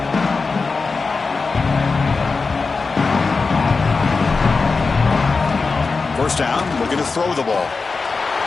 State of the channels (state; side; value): quieter; right; 4.4 dB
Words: First down, looking to throw the ball.